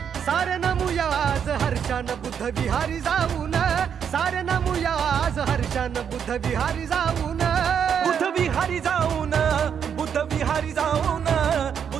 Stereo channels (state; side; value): quieter; left; 7.8 dB